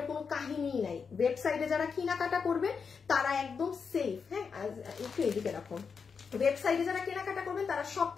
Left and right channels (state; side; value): quieter; right; 5.8 dB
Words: কোনো কাহিনীই নাই। ওয়েবসাইটে যারা কেনাকাটা করবেন তারা একদম সেফ। হ্যাঁ, একটু এদিকে রাখুন। ওয়েবসাইটে যারা কেনাকাটা করবেন তারা সব